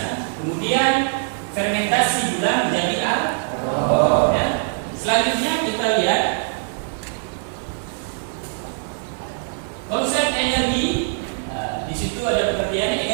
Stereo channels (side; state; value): left; silent; digital silence